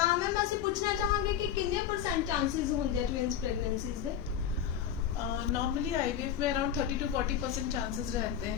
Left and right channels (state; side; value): quieter; right; 9.4 dB